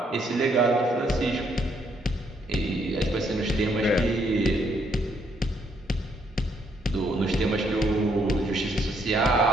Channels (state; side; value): normal; both; correlation 0.71